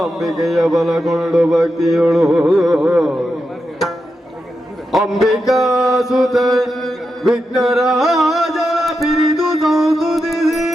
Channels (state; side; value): normal; both; correlation 0.87